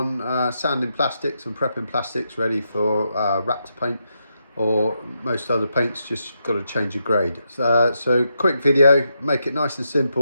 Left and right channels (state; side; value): inverted; both; correlation -0.83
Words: sanding plastics and prepping plastics ready for Raptor paint, or most other paints. Just got to change the grade. So quick video, make it nice and